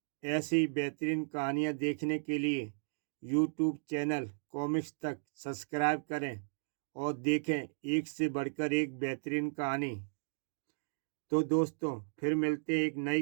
ऐसी ही बेहतरीन कहानियाँ देखने के लिए यूट्यूब चैनल कॉमिक्स तक सब्सक्राइब करें और देखें एक से बढ़कर एक बेहतरीन कहानी। तो दोस्तों, फिर मिलते हैं एक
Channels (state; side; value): silent; left; digital silence